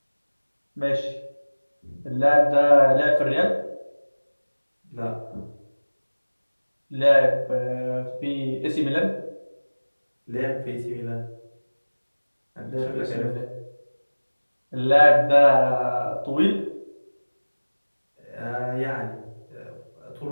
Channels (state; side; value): inverted; both; correlation -1.00